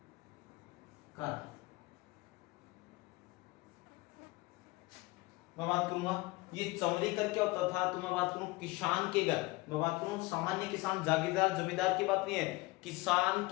कर मैं बात करूंगा ये चौरी कर क्या होता था, तो मैं बात करूं किसान के घर, मैं बात करूं सामान्य किसान जागीरदार जमींदार की बात नहीं है, किसान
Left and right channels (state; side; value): quieter; right; 22.4 dB